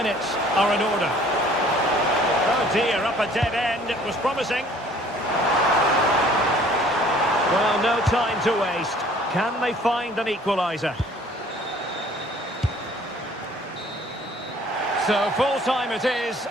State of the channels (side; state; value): both; normal; correlation 0.54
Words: are in order. Oh dear, up a dead end. It was promising. Well, no time to waste. Can they find an equaliser? So full time it is,